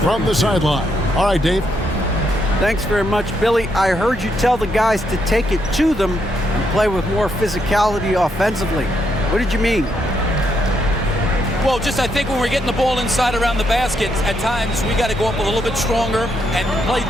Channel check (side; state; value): both; normal; correlation 0.77